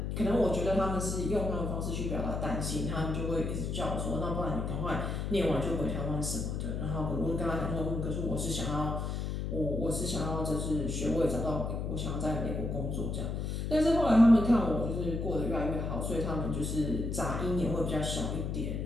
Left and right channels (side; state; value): left; noise; hum, 2 dB below the sound